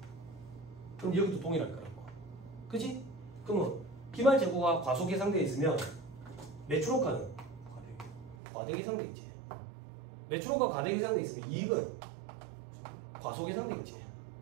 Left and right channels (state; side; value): drops out; left; at 8.3 s